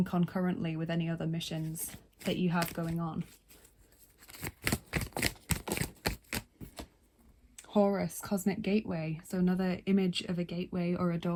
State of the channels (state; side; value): identical; both; correlation 1.00